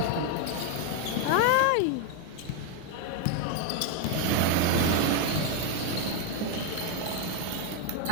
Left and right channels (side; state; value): both; different; correlation 0.01